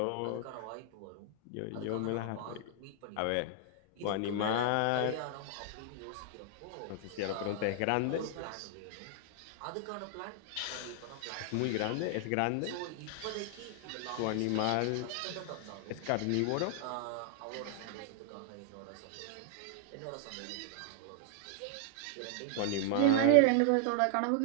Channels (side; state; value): both; different; correlation 0.00